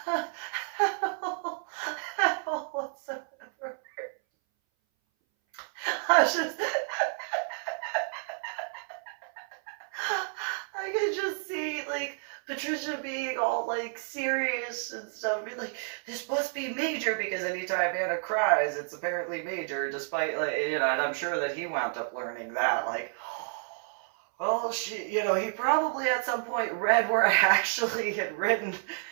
at all whatsoever. I just, I could just see like Patricia being all like serious and stuff, be like, this must be major, because anytime Anna cries, it's apparently major, despite like, you know, and I'm sure that he wound up learning that, like, well, you know, he probably at some point read where I actually had written,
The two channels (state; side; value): silent; left; 58 dB below the other